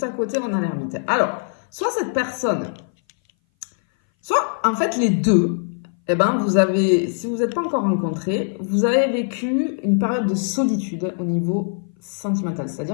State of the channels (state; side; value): silent; right; 59 dB below the other